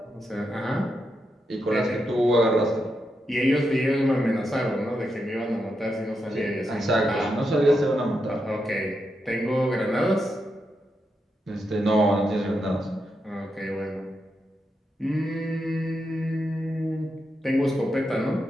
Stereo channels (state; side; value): normal; both; correlation 0.84